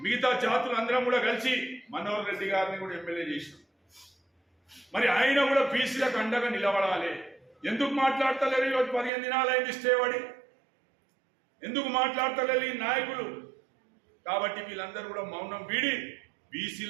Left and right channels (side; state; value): left; drops out; at 9.1 s